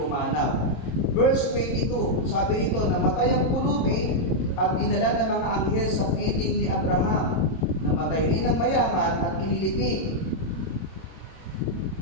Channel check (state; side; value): late; right; 27 ms